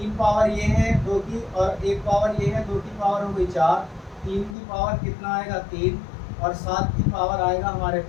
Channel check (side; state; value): right; drops out; at 4.5 s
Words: पावर ये है 2 की, और 1 पावर ये है, 2 की पावर हो गई 4, 3 की पावर कितना आएगा 3, और 7 की पावर आएगा हमारे